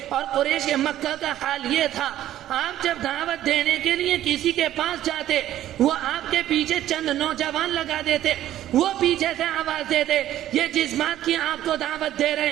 اور قریش مکہ کا حال یہ تھا، آپ جب دعوت دینے کے لیے کسی کے پاس جاتے وہ آپ کے پیچھے چند نوجوان لگا دیتے، وہ پیچھے سے آواز دیتے، یہ جس بات کی آپ کو دعوت دے رہے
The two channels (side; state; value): left; quieter; 12.7 dB